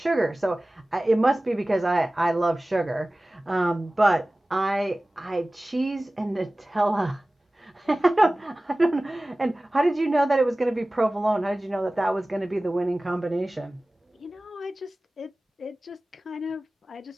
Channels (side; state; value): both; normal; correlation 0.97